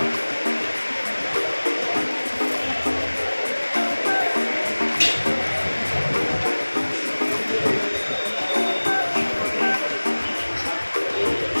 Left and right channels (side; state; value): both; inverted; correlation -1.00